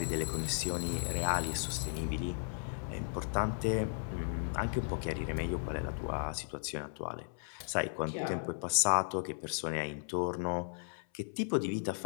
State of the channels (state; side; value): silent; right; 54 dB below the other